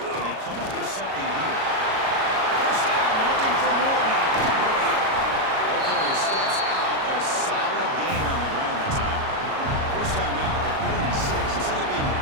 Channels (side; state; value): left; late; 37 ms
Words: they come up with something here. First down, looking for more now. Okay, he steps out, but a solid gain on the ground that time. First down now at the 46. Instead of being